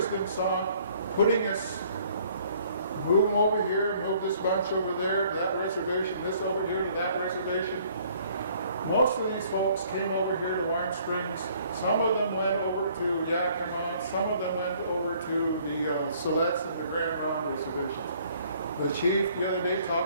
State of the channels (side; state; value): both; inverted; correlation -0.60